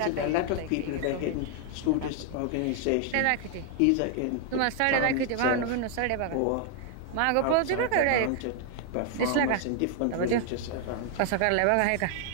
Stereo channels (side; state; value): both; different; correlation 0.00